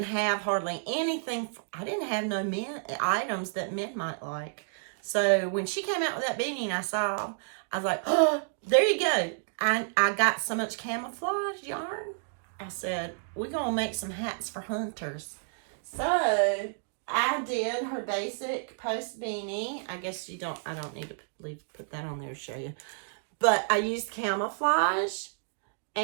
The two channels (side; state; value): left; silent; digital silence